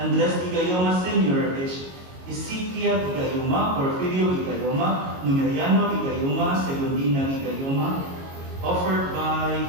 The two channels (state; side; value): late; left; 22 ms